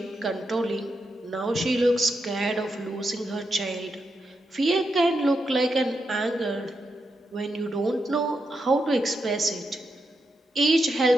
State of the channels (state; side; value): normal; both; correlation 0.84